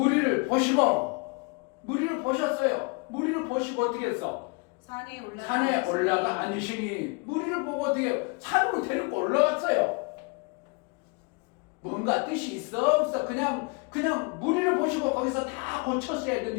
무리를 보셨어요. 무리를 보시고 어떻게 했어? 산에 올라가 앉으시니 무리를 보고 어떻게 산으로 데리고 올라갔어요. 뭔가 뜻이 있어 없어? 그냥 무리를 보시고 거기서 다 고쳤어야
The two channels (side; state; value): right; quieter; 30.8 dB